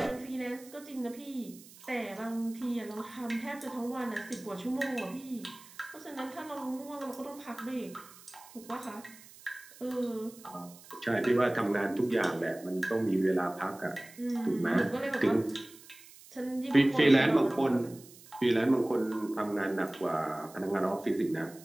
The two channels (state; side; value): noise; right; hiss, 21 dB below the sound